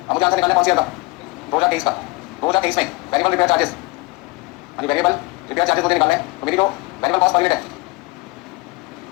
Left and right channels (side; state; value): right; quieter; 23.6 dB